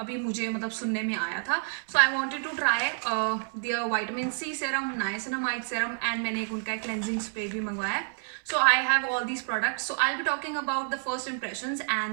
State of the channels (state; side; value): silent; left; 59 dB below the other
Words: मुझे सुनने में आया था. So I wanted to try their vitamin C serum, niacinamide serum and मैंने एक उनका क्लेंजिंग स्प्रे भी मंगवाया है. So I have all these products. So I'll be talking about the first impressions